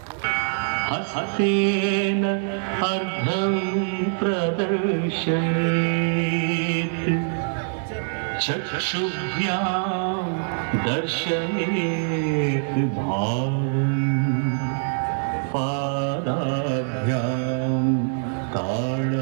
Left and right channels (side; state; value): left; silent; 63 dB below the other